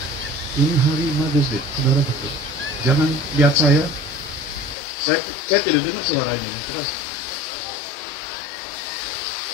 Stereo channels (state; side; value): drops out; right; at 4.8 s